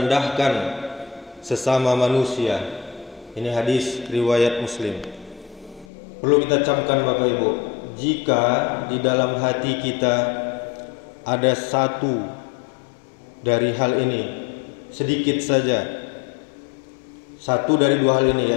sesama manusia." Ini hadis riwayat Muslim. Perlu kita camkan Bapak Ibu, jika di dalam hati kita ada satu dari hal ini, sedikit saja, satu dari dua hal ini,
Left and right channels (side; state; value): right; drops out; at 5.9 s